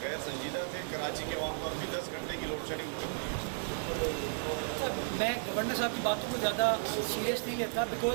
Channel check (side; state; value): left; silent; 55 dB below the other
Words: غیر سنجیدہ تھے, کراچی کے عوام کو اب بھی 10 گھنٹے کی لوڈ شیڈنگ بہت ہوئی. میں گورنر صاحب کی باتوں کو زیادہ سیریس نہیں لیتا,